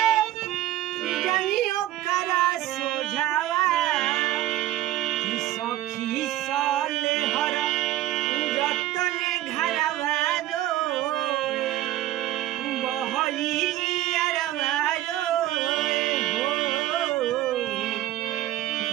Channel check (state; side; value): quieter; left; 14.3 dB